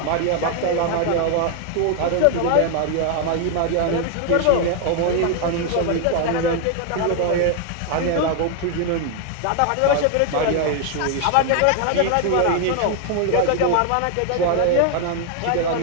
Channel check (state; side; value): different; both; correlation 0.00